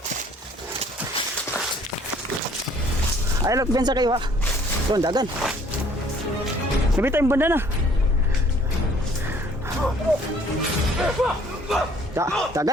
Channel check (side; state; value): both; normal; correlation 0.58